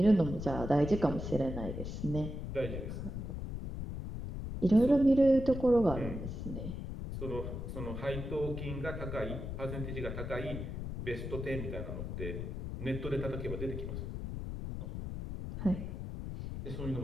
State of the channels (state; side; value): noise; left; rumble, 6 dB below the sound